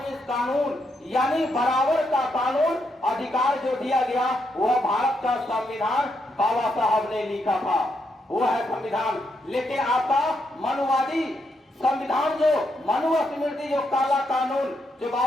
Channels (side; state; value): both; normal; correlation 0.79